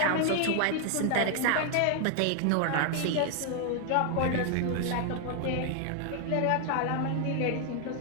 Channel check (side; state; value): both; different; correlation 0.00